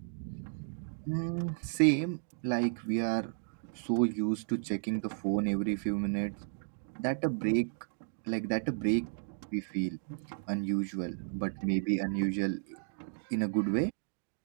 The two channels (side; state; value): left; silent; digital silence